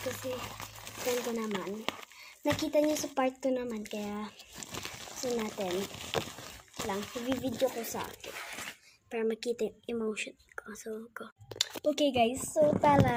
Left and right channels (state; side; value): identical; both; correlation 1.00